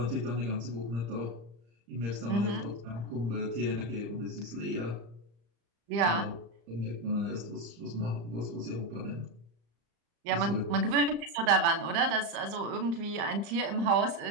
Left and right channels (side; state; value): left; late; 35 ms